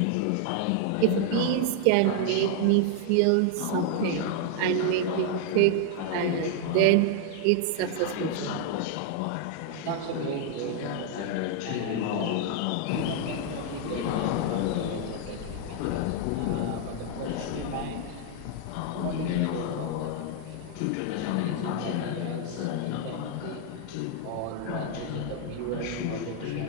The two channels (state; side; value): different; both; correlation 0.00